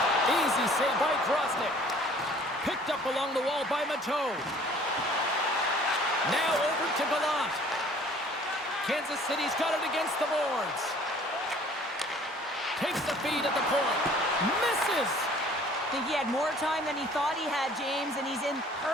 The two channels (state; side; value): normal; both; correlation 0.53